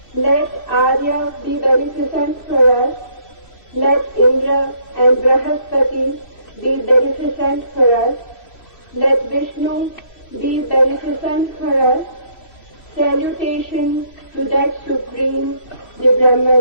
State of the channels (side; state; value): right; late; 3.0 ms